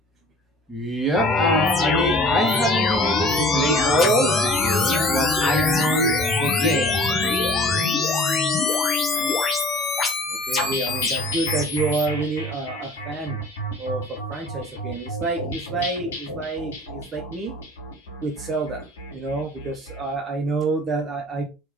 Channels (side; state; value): both; normal; correlation 0.47